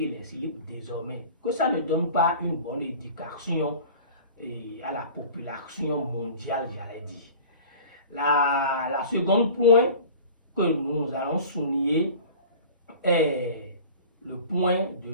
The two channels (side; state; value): both; inverted; correlation -0.41